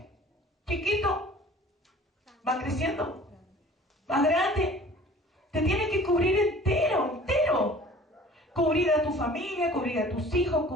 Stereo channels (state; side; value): normal; both; correlation 0.47